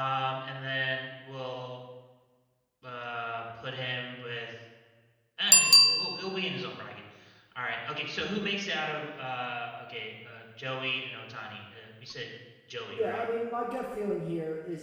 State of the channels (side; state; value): both; identical; correlation 1.00